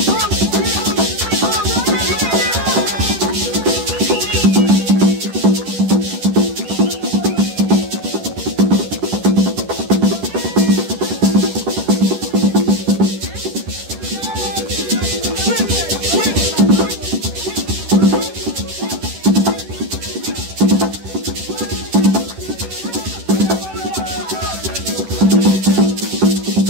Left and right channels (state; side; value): late; left; 10 ms